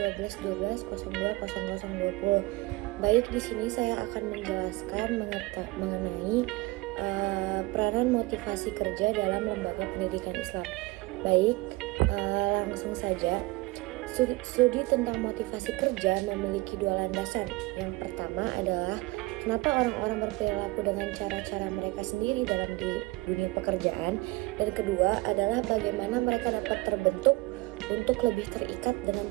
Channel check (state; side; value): quieter; left; 21.8 dB